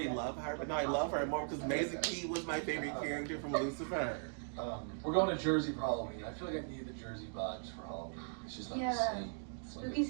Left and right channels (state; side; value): silent; left; digital silence